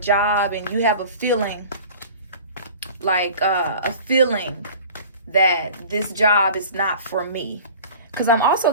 and you have a feeling, that this job is not for me, because I'm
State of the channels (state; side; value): inverted; both; correlation -0.42